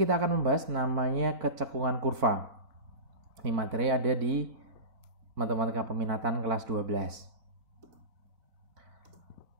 akan membahas namanya kecekungan kurva. Ini materi ada di matematika peminatan kelas 12.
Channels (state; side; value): late; left; 4.0 ms